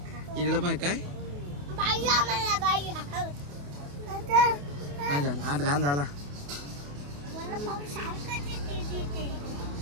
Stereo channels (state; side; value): late; left; 28 ms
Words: इकडे पाय काय हात घाण झाला